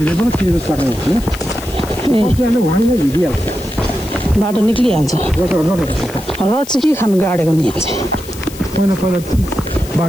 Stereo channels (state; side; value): noise; left; hiss, 17 dB below the sound